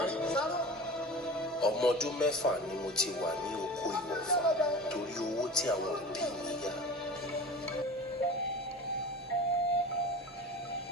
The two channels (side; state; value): both; normal; correlation 0.34